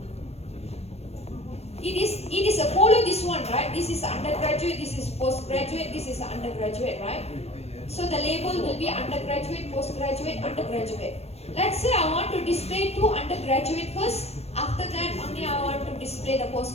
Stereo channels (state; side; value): late; right; 0.30 ms